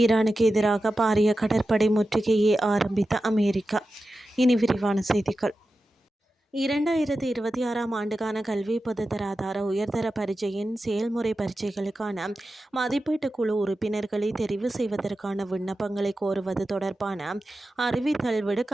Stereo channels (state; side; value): normal; both; correlation 0.92